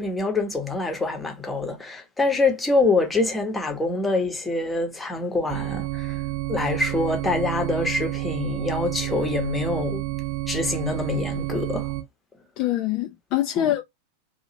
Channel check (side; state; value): both; normal; correlation 0.46